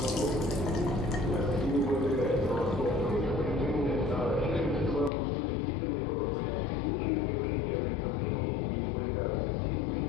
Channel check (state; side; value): drops out; right; at 5.1 s